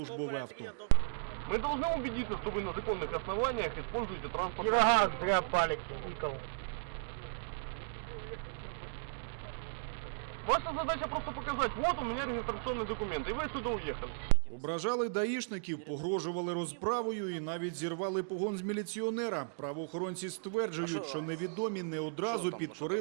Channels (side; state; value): left; silent; digital silence